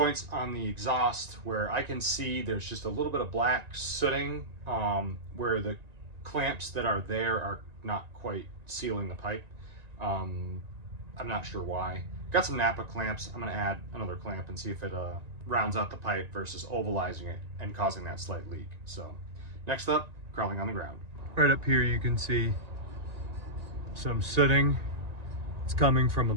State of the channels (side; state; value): left; late; 1.9 ms